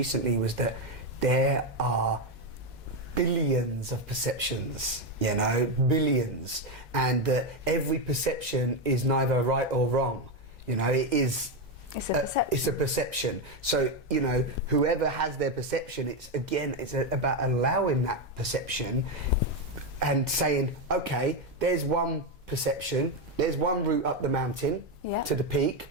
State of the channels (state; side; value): normal; both; correlation 0.08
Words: was that there are billions of perceptions, you know, billions, and every perception is neither right or wrong, you know. It's a perception. So, you know, whoever has their perception, it's about allowing that perception and saying, okay, there's one perception, there's one route up the mountain to the peak,